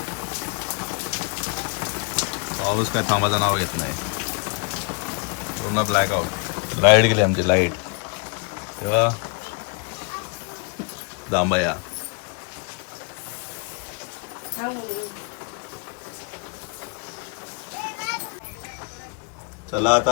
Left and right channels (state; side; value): quieter; right; 35.1 dB